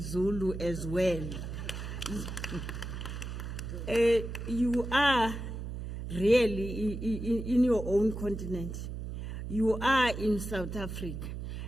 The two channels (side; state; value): right; noise; hum, 6 dB below the sound